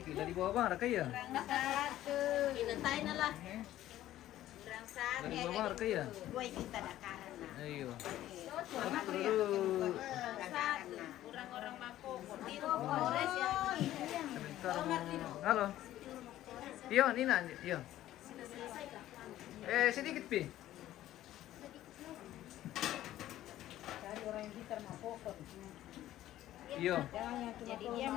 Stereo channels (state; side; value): quieter; right; 13.7 dB